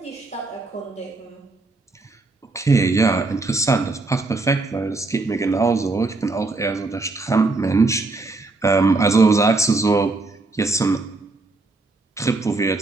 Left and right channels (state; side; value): quieter; left; 3.4 dB